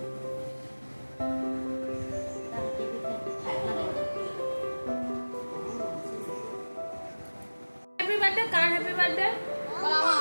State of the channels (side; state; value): both; inverted; correlation -1.00